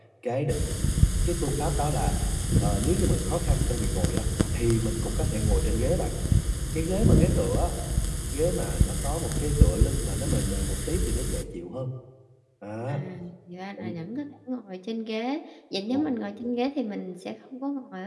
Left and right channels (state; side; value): identical; both; correlation 1.00